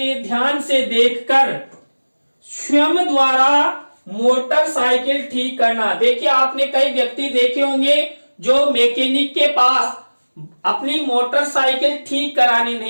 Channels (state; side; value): inverted; both; correlation -1.00